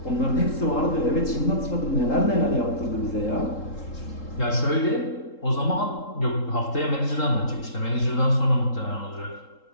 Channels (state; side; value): late; right; 3.7 ms